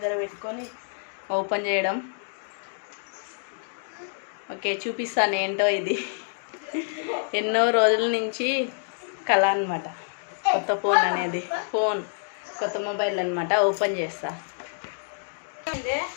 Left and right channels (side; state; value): right; silent; digital silence